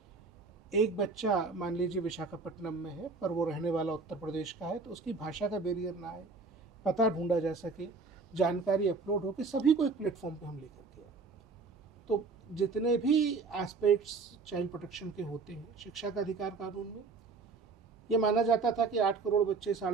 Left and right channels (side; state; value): left; quieter; 4.3 dB